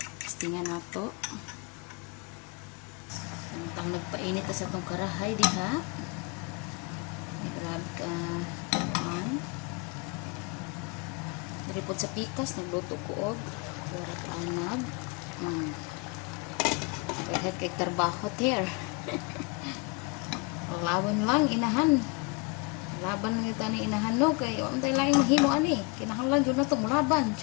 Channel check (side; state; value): right; quieter; 28.0 dB